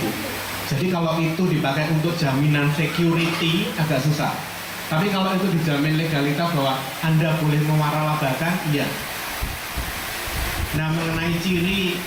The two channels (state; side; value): identical; both; correlation 1.00